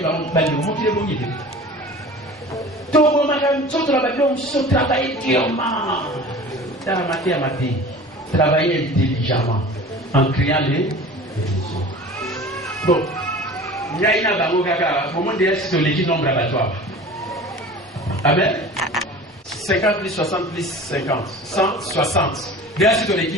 bali on monte les bons idées. Tout le monde tout travailler on se travailler durement. Dans la matière travailler intelligemment en créant les bon. Il y a une bango kaka au moment de c'est l'équipe nombre abattoir. Amen. 50 plus 60 plus 50. 160. Déjà, c'est ton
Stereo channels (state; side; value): normal; both; correlation 0.40